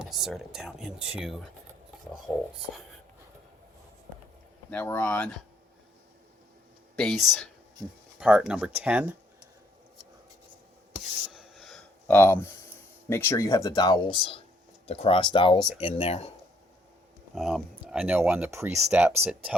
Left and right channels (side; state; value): both; normal; correlation 0.67